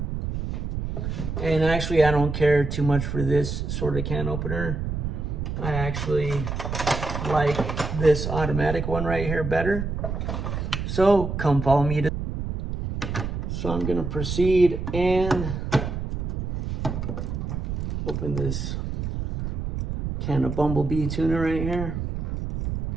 And actually, I don't care too much for this sort of can opener. I actually like this automatic one right here better. So come follow me. So I'm gonna proceed and open this can of bumblebee tuna right here,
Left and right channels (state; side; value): noise; right; rumble, 3 dB below the sound